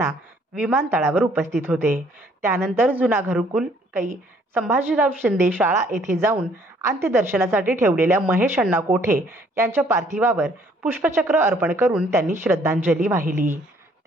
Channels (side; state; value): both; normal; correlation 0.62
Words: विमानतळावर उपस्थित होते। त्यानंतर जुना घरकुल कै संभाजीराव शिंदे शाळा येथे जाऊन अंत्यदर्शनासाठी ठेवलेल्या महेश अण्णा कोठे यांच्या पार्थिवावर पुष्पचक्र अर्पण करून त्यांनी श्रद्धांजली वाहिली।